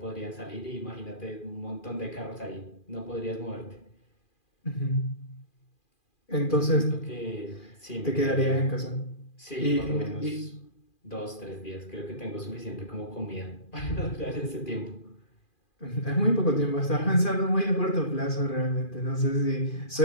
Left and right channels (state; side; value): late; right; 2.4 ms